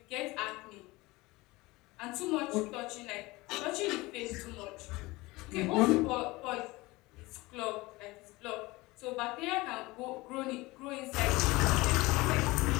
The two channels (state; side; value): quieter; right; 21.5 dB